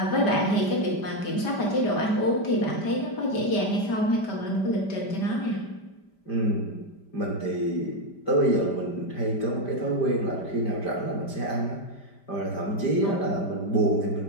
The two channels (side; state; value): right; late; 5.1 ms